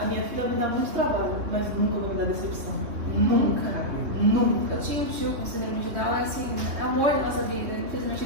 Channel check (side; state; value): left; late; 3.2 ms